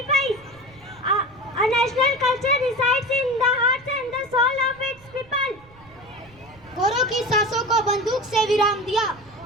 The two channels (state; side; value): noise; right; rumble, 25 dB below the sound